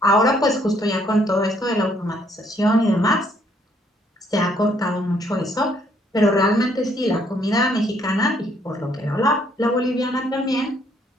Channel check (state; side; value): normal; both; correlation 0.67